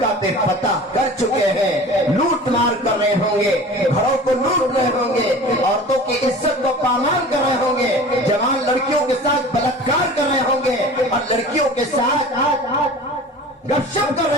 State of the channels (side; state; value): both; normal; correlation 0.40